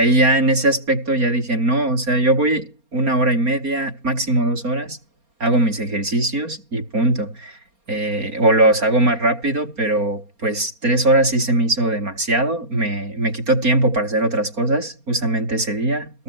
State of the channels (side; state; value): left; late; 4.3 ms